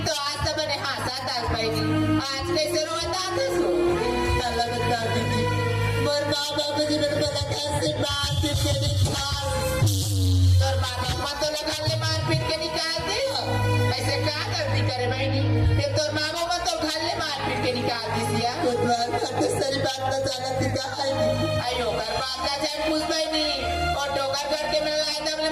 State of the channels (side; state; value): both; identical; correlation 1.00